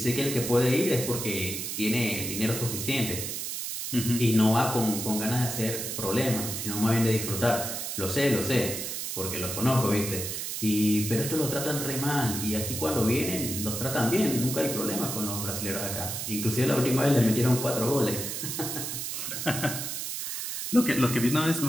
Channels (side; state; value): right; noise; hiss, 4 dB below the sound